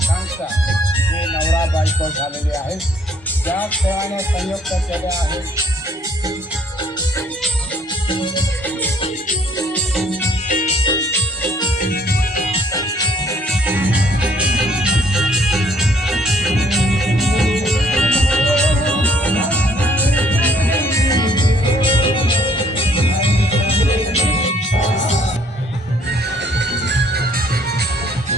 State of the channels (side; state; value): both; normal; correlation 0.62